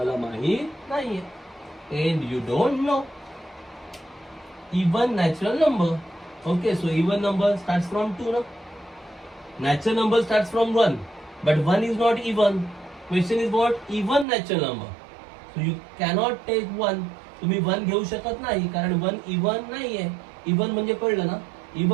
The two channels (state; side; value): drops out; left; at 14.2 s